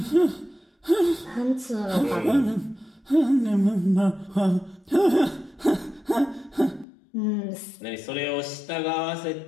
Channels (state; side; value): drops out; right; at 6.9 s